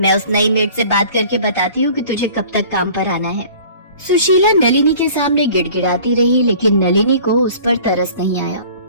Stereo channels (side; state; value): both; inverted; correlation -0.48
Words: उस नई मेड से बात करके बताती हूँ कि तुझे कब तक काम पर आना है। सुशीला नलिनी के सामने गिड़गिड़ाती रही, लेकिन नलिनी को उस पर तरस नहीं आया।